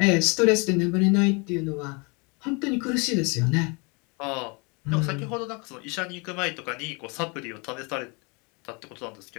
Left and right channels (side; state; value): right; quieter; 30.8 dB